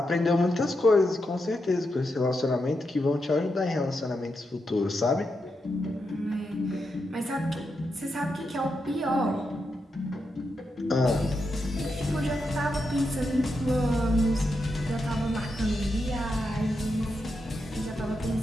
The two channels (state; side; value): normal; both; correlation 0.85